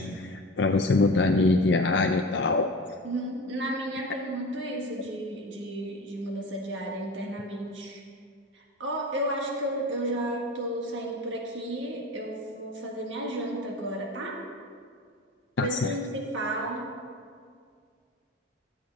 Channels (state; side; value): normal; both; correlation 0.32